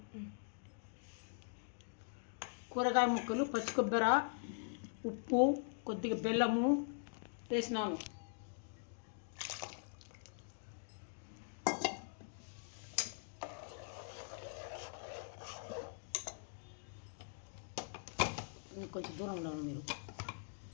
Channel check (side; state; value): right; silent; digital silence